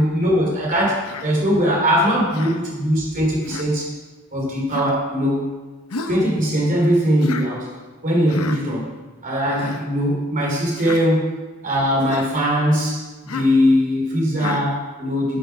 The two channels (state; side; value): normal; both; correlation 0.64